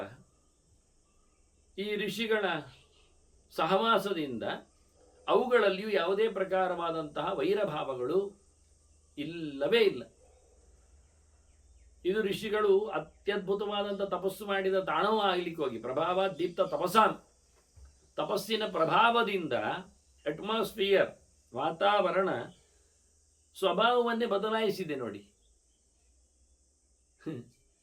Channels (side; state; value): both; identical; correlation 1.00